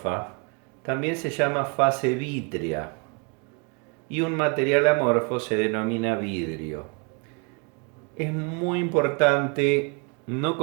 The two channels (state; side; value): quieter; left; 33.8 dB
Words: también se llama fase vítrea, y un material amorfo se denomina vidrio. Es muy importante no